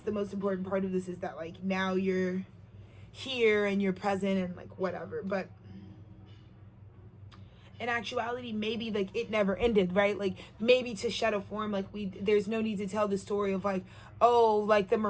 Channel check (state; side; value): identical; both; correlation 1.00